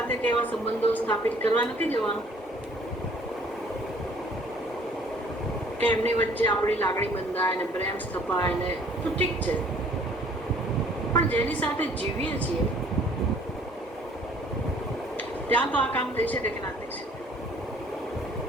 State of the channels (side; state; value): both; normal; correlation 0.56